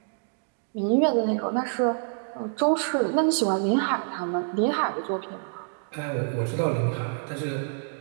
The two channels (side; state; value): left; silent; digital silence